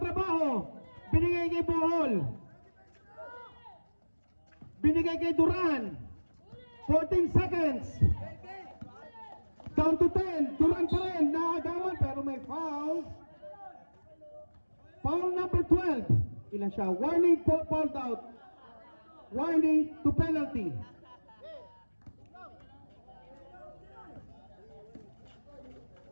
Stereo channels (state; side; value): inverted; both; correlation -1.00